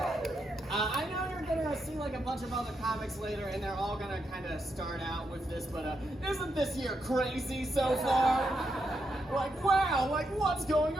I know you're gonna see like a bunch of other comics later, and they're all gonna kind of start out with this, but isn't this year crazy so far? Like, wow, like what's going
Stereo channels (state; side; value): normal; both; correlation 0.82